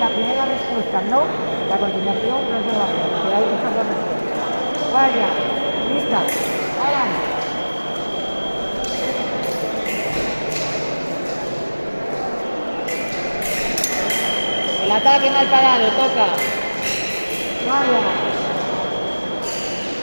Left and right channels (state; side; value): inverted; both; correlation -1.00